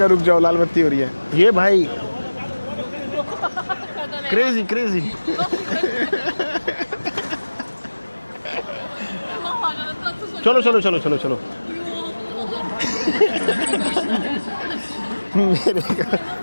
रुक जाओ, लाल बत्ती हो रही है। ये भाई क्रेजी चलो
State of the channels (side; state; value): both; inverted; correlation -1.00